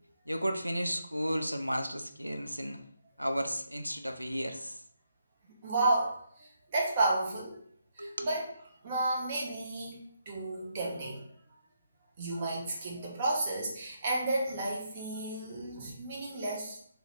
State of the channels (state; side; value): inverted; both; correlation -0.79